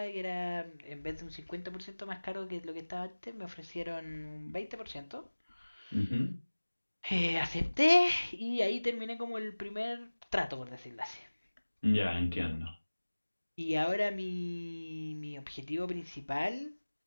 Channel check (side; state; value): both; inverted; correlation -1.00